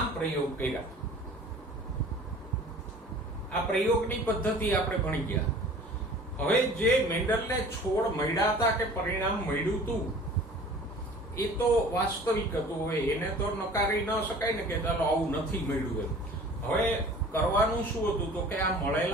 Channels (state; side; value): normal; both; correlation 0.46